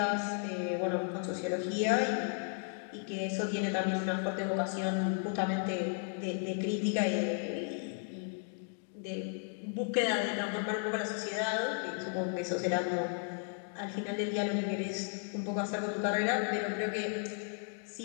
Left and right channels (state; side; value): silent; right; 55 dB below the other